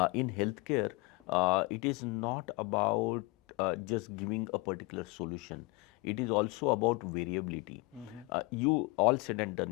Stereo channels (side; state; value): right; quieter; 25.5 dB